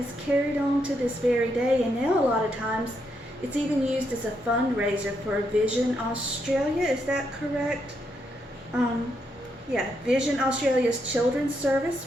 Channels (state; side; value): normal; both; correlation 0.79